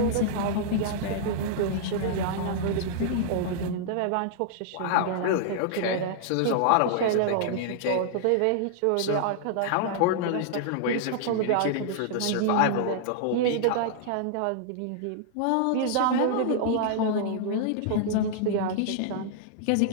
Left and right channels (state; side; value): different; both; correlation -0.01